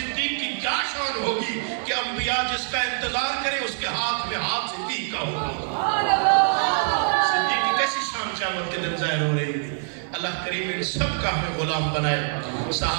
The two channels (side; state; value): left; silent; digital silence